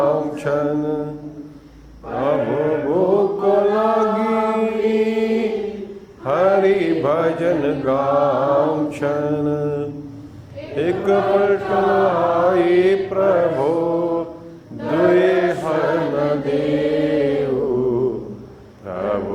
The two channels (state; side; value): identical; both; correlation 1.00